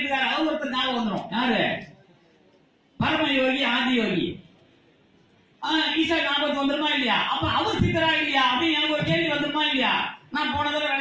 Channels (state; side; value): identical; both; correlation 1.00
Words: இருக்காரு, அவர் ஒருத்தர் ஞாபகம் வந்துடும். யாரு? பரம யோகி, ஆதி யோகி. ஈசா ஞாபகத்துக்கு வந்துருமா இல்லையா? அப்ப அவர் சித்தரா இல்லையா அப்படின்னு எனக்கு ஒரு கேள்வி வந்துருமா இல்லையா? நான் போன தடவை